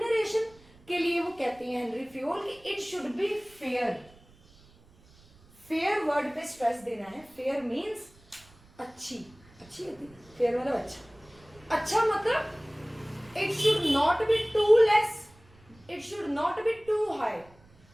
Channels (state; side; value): noise; right; rumble, 27 dB below the sound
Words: के लिए वो कहते हैं हेनरी फ्योल कि it should be fair. Fair word पे स्ट्रेस देना है। फेयर मीन्स अच्छी, अच्छी होती है फेयर मतलब अच्छा। अच्छा मतलब it should not be too less, it should not be too high.